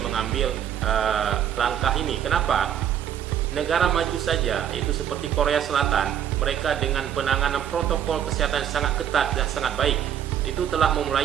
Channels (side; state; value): left; quieter; 9.6 dB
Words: mengambil langkah ini. Kenapa? Negara maju saja, itu seperti Korea Selatan, mereka dengan penanganan protokol kesehatan sangat ketat dan sangat baik, itu telah